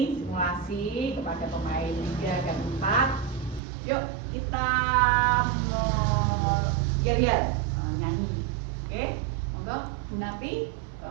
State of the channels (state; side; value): drops out; left; at 3.6 s